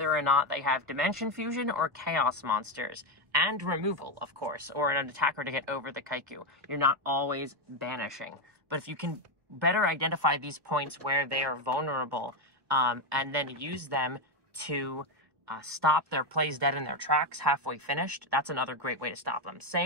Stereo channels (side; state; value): left; late; 1.2 ms